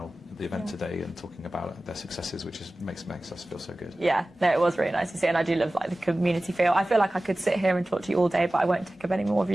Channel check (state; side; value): normal; both; correlation 0.96